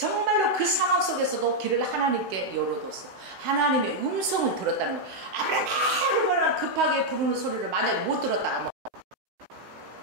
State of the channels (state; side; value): late; left; 16 ms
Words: 그 상황 속에서도 길을 하나님께 열어뒀어요. 하나님의 음성을 들었다는 거예요. 아브라함 급하게 부르는 소리를 만약에 못 들었다가